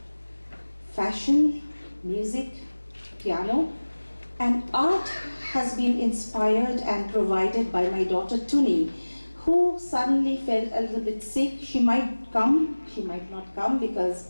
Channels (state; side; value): inverted; both; correlation -1.00